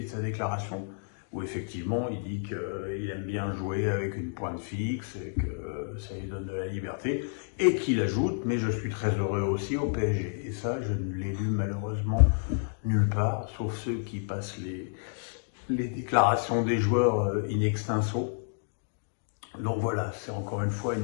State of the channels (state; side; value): silent; right; digital silence